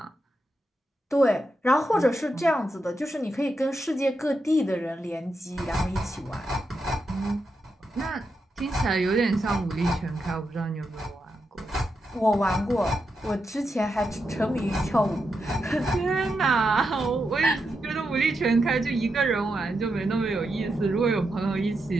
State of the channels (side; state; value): both; normal; correlation 0.85